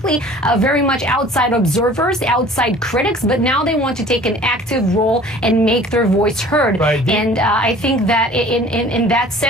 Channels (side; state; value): both; normal; correlation 0.48